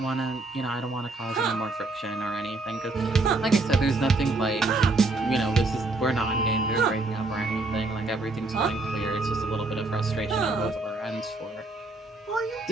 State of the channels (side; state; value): left; quieter; 3.2 dB